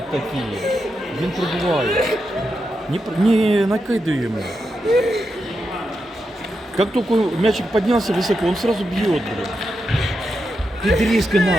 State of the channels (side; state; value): both; normal; correlation 0.86